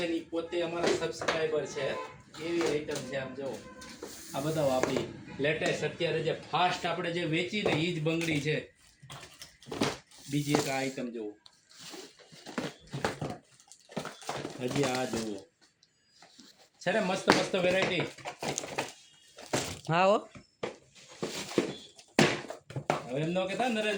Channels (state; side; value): identical; both; correlation 1.00